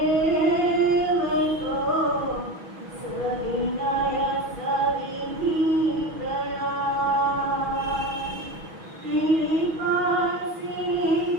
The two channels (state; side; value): late; left; 6.1 ms